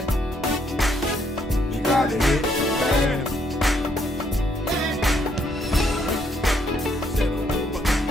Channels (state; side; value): normal; both; correlation 0.71